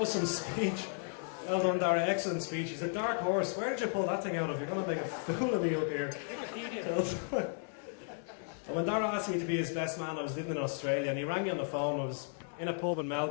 some speech. Well done, Dara. Excellent speech. He's a dark horse. Where did you pull that thing out of? You're going to make a fool of me up here. And when Dara asked me to be his best man, I was living in Australia, and he rang me on the phone. I was in a pub in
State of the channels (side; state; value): right; silent; 55 dB below the other